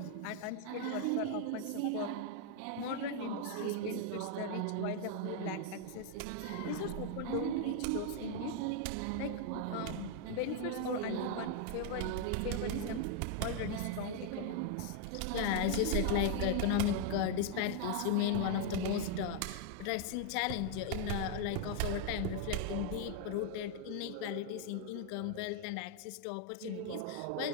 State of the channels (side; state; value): both; different; correlation 0.00